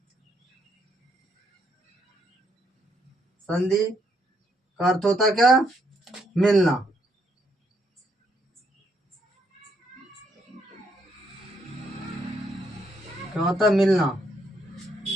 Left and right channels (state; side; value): normal; both; correlation 0.74